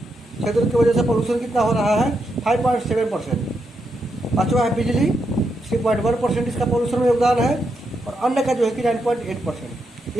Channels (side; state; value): both; normal; correlation 0.82